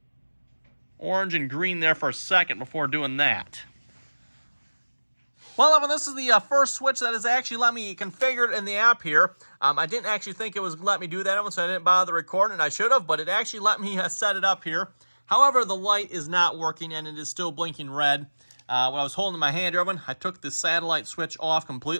orange and green there for a second before doing that. Well, everyone, this is the first switch that has actually let me configure it in the app here. I didn't actually think it was let me do that, everyone, so I didn't bother recording it. I should have, but it actually let me set it up here. However, the light is not working, and it is still blinking red. When I was holding my hand, everyone, I took the satellite switch off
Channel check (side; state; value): both; inverted; correlation -1.00